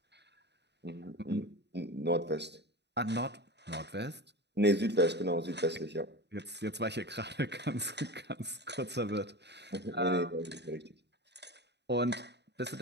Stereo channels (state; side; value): late; left; 0.50 ms